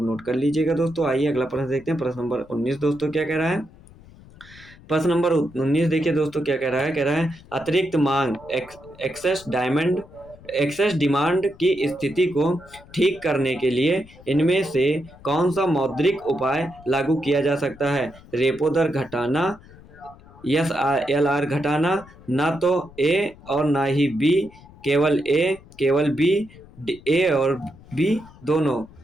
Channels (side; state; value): left; noise; rumble, 22 dB below the sound